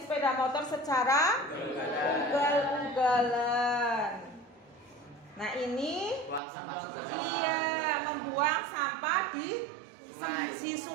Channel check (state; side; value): drops out; left; at 6.4 s